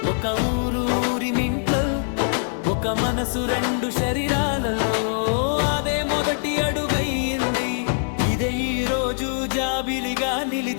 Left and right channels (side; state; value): right; silent; 63 dB below the other